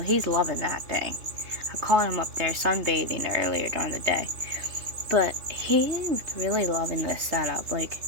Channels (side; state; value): left; late; 3.1 ms